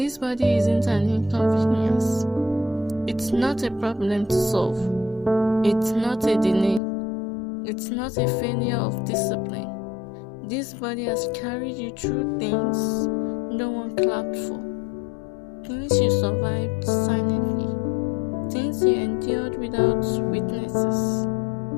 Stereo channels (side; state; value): right; drops out; at 6.8 s